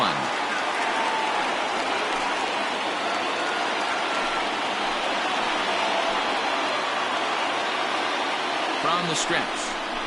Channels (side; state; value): both; identical; correlation 1.00